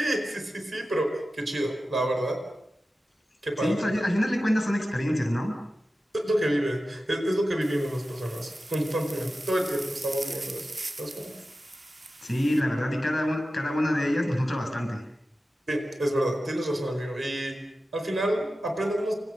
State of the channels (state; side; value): normal; both; correlation 0.94